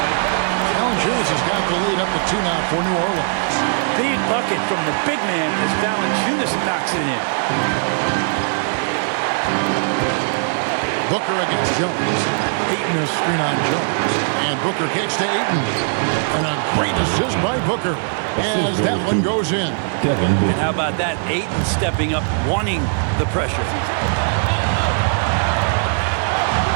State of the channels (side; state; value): left; silent; digital silence